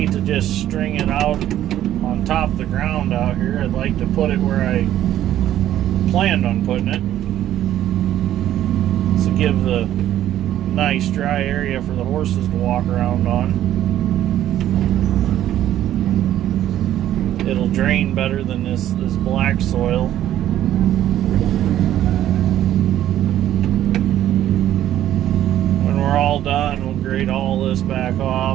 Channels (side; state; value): left; quieter; 12.2 dB